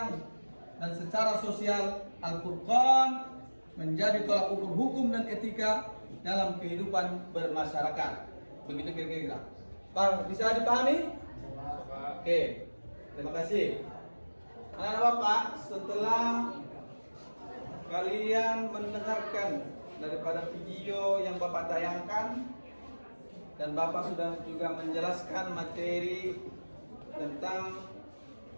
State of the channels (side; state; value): both; inverted; correlation -1.00